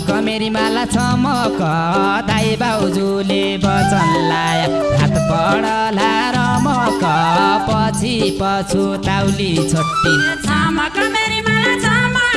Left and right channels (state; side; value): noise; left; hum, 22 dB below the sound